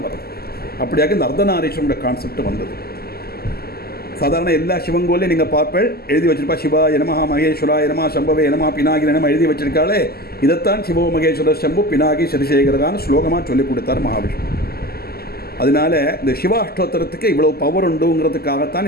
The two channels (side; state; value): right; late; 0.45 ms